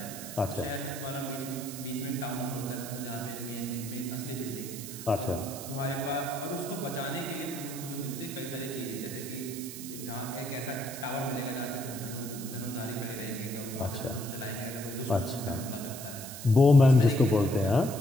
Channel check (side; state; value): right; noise; hiss, 10 dB below the sound